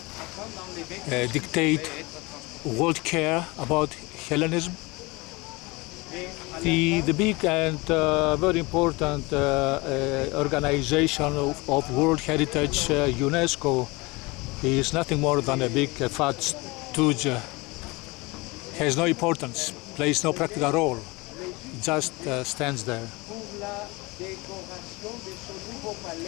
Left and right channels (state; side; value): quieter; right; 24.5 dB